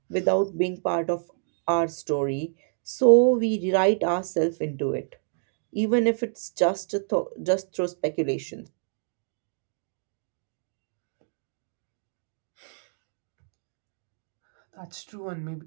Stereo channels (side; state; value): left; silent; digital silence